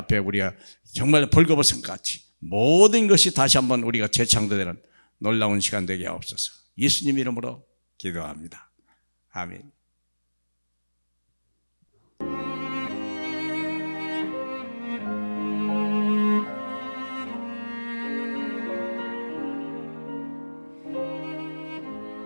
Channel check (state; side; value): inverted; both; correlation -1.00